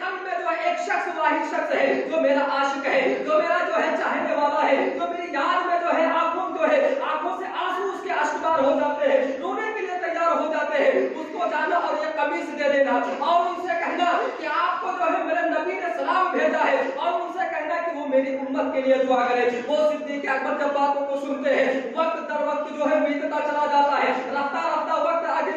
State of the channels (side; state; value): both; identical; correlation 1.00